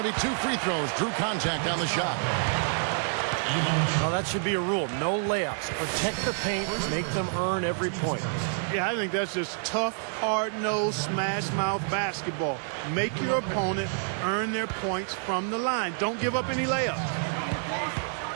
to be 2 free throws. Drew contact on the shot. Well, that should be a rule. No layups. Protect the paint. Make them earn every point. Yeah, I think that's just tough, hard-nosed, smash-mouth basketball. Make your opponent earn their points from the line. Don't give up any layups.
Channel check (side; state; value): left; silent; 59 dB below the other